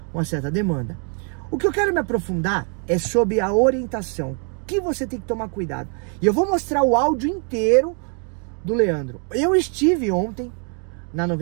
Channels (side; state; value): left; quieter; 40.0 dB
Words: uma certa demanda. O que eu quero me aprofundar é sobre a orientação, que você tem que tomar cuidado. E eu vou mostrar o áudio inteiro do Leandro. Eu estive ontem na